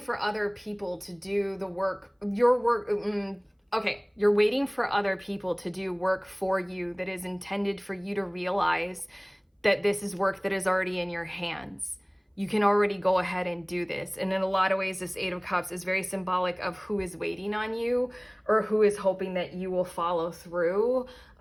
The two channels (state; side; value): identical; both; correlation 1.00